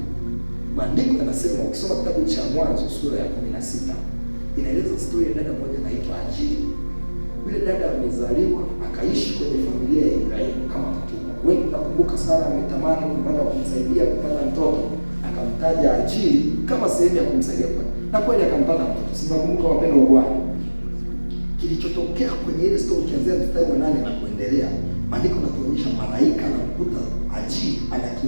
Maandiko yanasema, ukisoma kitabu cha Mwanzo sura ya 16 inaeleza story ya dada mmoja anaitwa Hajiri. Yule dada amezaliwa akaishi kwenye familia ya Ibrahimu kama mtumwa. Wewe unakumbuka Sara ametamani kupata kumsaidia kupata mtoto, akamtaja Hajiri kama sehemu ya kumsaidia kupata. Na kweli akampata mtoto. Sinakumbuka wapendwa Bwana. Kilichotokea kwenye ile story kianzia mstari wa 8 na kuendelea, maandiko yanatuonyesha malaika anamkuta Hajiri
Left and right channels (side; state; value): both; inverted; correlation -1.00